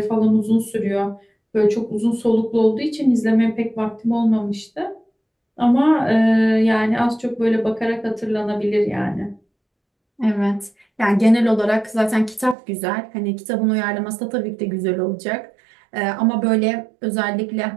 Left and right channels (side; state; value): left; drops out; at 12.6 s